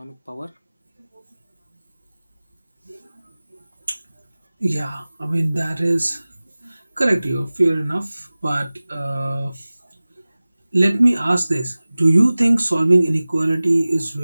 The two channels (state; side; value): inverted; both; correlation -0.98